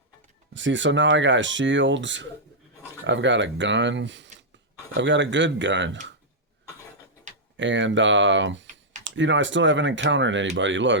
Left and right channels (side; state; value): both; normal; correlation -0.07